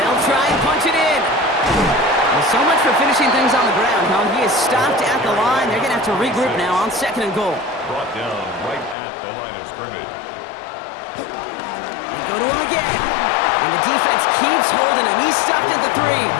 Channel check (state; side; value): drops out; right; at 9.0 s